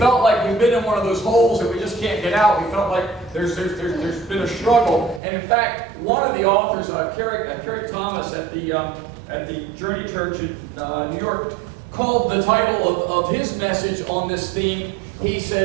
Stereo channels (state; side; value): drops out; left; at 5.2 s